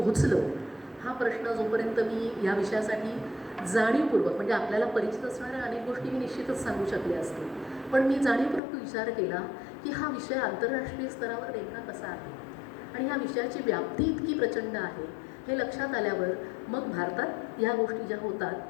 हा प्रश्न जोपर्यंत मी या विषयासाठी जाणीवपूर्वक, म्हणजे आपल्याला परिचित असणाऱ्या अनेक गोष्टी मी निश्चितच सांगू शकले असते, पण मी जाणीवपूर्वक विचार केला की हा विषय आंतरराष्ट्रीय स्तरावर नेमका कसा आहे आणि ह्या विषयाची व्याप्ती इतकी प्रचंड आहे हे लक्षात आल्यावर मग भारतात या गोष्टी ज्या होतात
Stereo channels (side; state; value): right; drops out; at 8.6 s